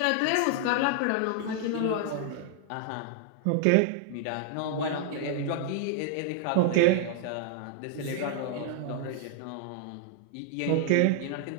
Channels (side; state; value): both; different; correlation 0.00